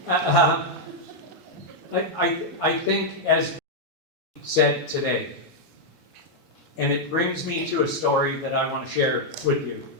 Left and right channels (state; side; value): normal; both; correlation -0.03